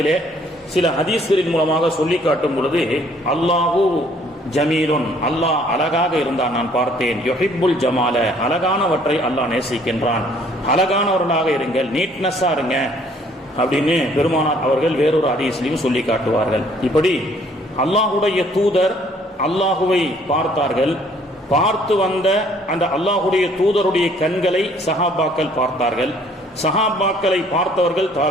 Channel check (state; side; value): normal; both; correlation 0.60